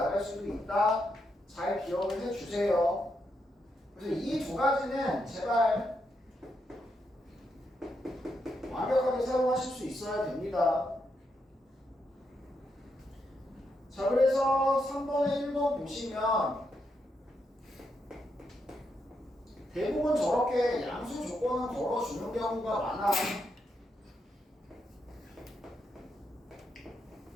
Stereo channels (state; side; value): normal; both; correlation 0.81